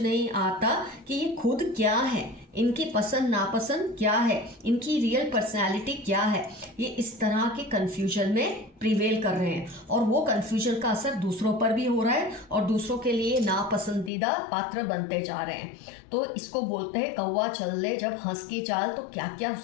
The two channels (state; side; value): drops out; right; at 14.1 s